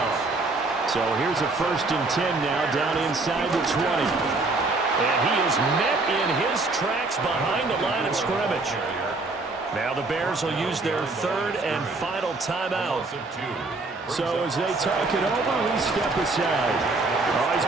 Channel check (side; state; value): left; quieter; 3.4 dB